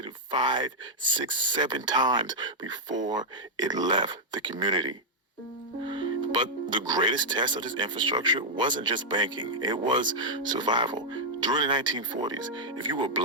5, 6, 7 times before it left the community. But the greatest test of this infrastructure wasn't just banking, it was survival. During the 1940s, if you were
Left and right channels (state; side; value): normal; both; correlation -0.04